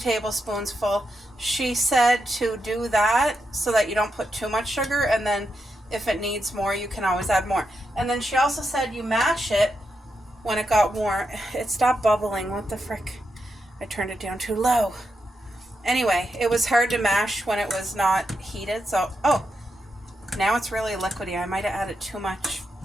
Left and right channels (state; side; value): normal; both; correlation 0.85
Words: full. She said to do that so that you don't put too much sugar, and then if it needs more, you can always add more. And then she also said you mash it when it got warm. It stopped bubbling. What the frick? I turned it down too low. Anyway, it was hard to mash when it was not heated. So, now it's really liquidy. I might have added too much.